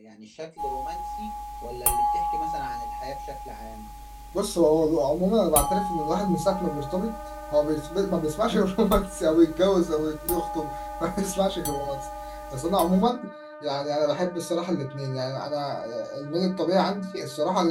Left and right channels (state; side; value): identical; both; correlation 1.00